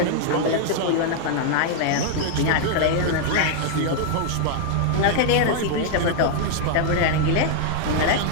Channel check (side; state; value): both; different; correlation 0.00